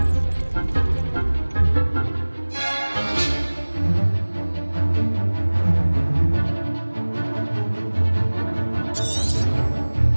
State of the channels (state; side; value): inverted; both; correlation -1.00